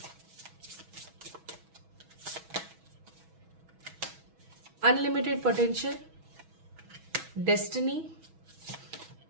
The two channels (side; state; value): left; late; 6.2 ms